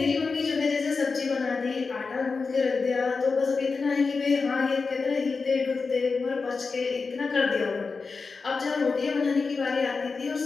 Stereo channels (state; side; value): quieter; right; 4.5 dB